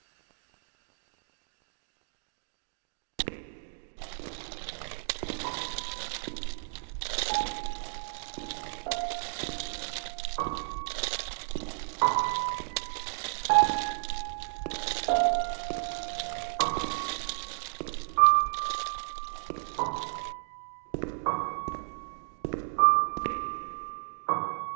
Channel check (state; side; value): silent; left; digital silence